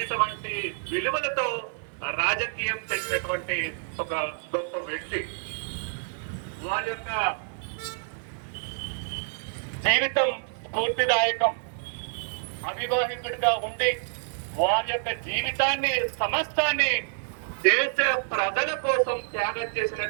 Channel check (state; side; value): silent; left; 59 dB below the other